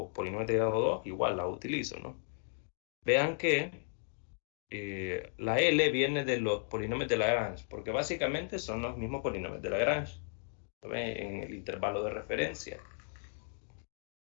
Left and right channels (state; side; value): silent; right; digital silence